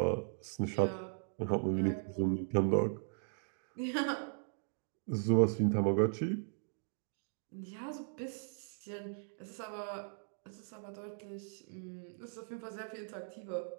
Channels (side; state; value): left; silent; digital silence